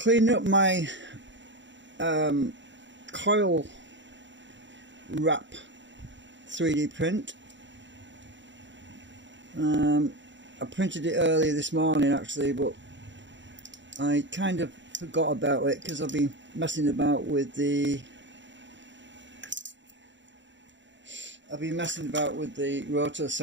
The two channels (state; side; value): late; left; 0.54 ms